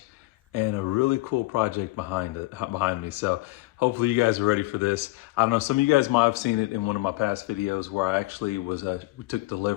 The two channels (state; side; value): quieter; right; 20.3 dB